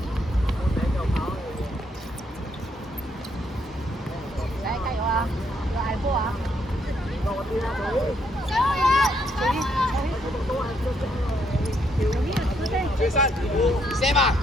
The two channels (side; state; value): both; normal; correlation 0.73